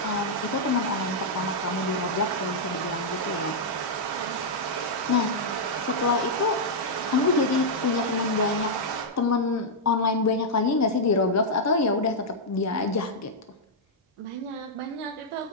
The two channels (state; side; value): normal; both; correlation -0.06